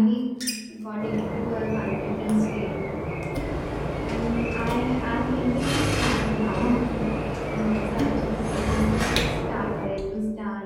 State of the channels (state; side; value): identical; both; correlation 1.00